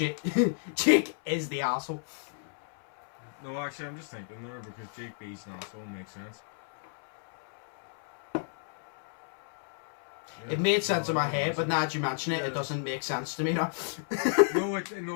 is the asshole. No, actually, I'm just thinking there because Jake B's an asshole makes sense. Yeah. It made sense in my head, but now that you mention it, it doesn't make sense to me now. See,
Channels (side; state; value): right; silent; 57 dB below the other